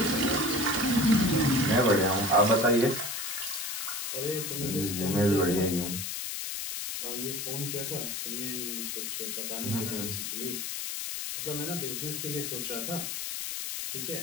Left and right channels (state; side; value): noise; left; hiss, 4 dB below the sound